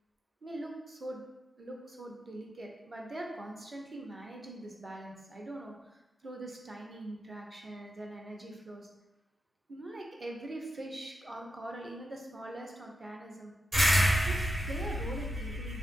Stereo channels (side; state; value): both; normal; correlation 0.89